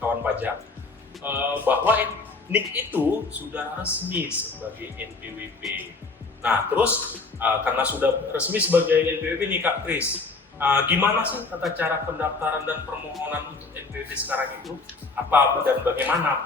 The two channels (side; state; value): right; quieter; 4.0 dB